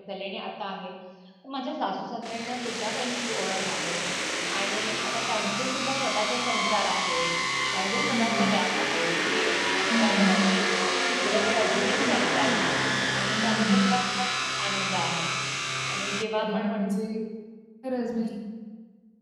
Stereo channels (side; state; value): both; identical; correlation 1.00